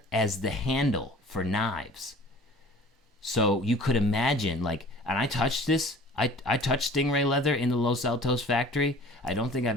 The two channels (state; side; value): normal; both; correlation 0.46